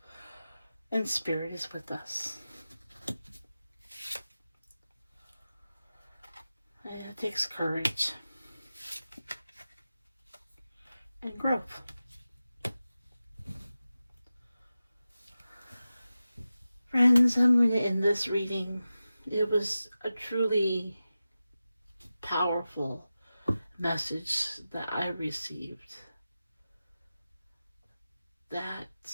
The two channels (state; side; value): inverted; both; correlation -0.94